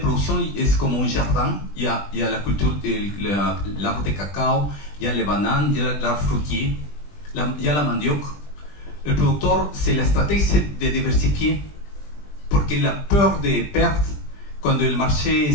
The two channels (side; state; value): right; late; 20 ms